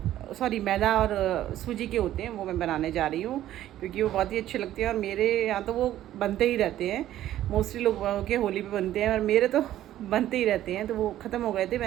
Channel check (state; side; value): quieter; left; 12.9 dB